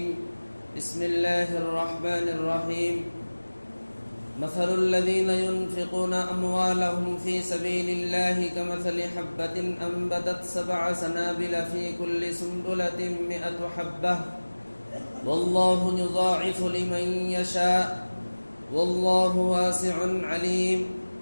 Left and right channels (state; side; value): inverted; both; correlation -1.00